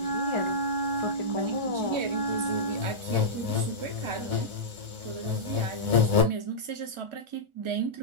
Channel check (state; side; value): late; left; 1.4 ms